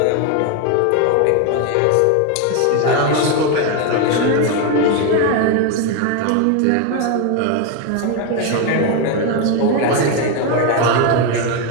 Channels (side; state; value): both; different; correlation 0.01